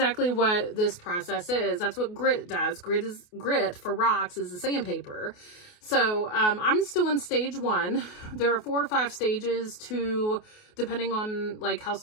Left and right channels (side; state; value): right; late; 28 ms